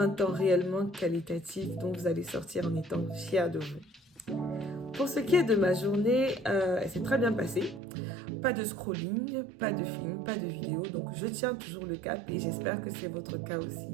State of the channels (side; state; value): left; drops out; at 7.8 s